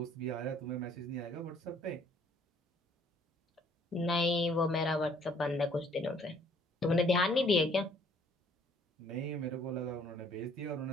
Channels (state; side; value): normal; both; correlation 0.60